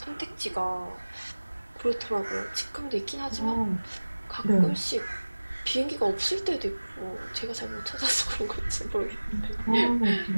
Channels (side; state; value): both; inverted; correlation -1.00